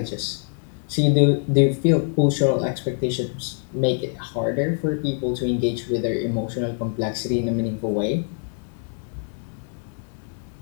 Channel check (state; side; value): silent; right; 57 dB below the other